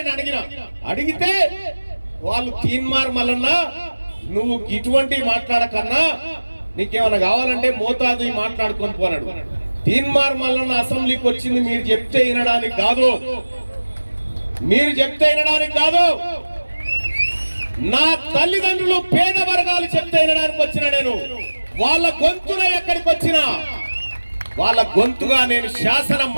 అడిగితే వాళ్ళు తీన్మార్ మల్లన్న నువ్వు ఇటువంటి మాట్లాడకన్నా నీకేమైనా కావాలంటే మోతాదు మాట్లాడుకొని పోనాడు. తీన్మార్ మల్లన్న అసెంబ్లీకి వచ్చింది మీరు చెప్తే వినడానికి కాదు, మీరు చెప్తే వినడానికి కాదు. నా తల్లిదండ్రులు పేద వర్గాలు చెప్తే వినడానికి వచ్చిన నేను వాళ్ళ గొంతున ఎక్కడికి వచ్చినా వాళ్ళ గొంతుగా నేను శాసన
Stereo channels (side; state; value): both; inverted; correlation -1.00